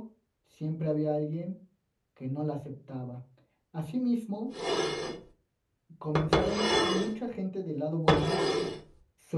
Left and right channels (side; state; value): both; identical; correlation 1.00